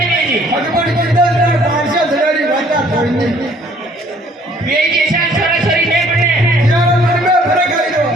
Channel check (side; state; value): both; normal; correlation 0.59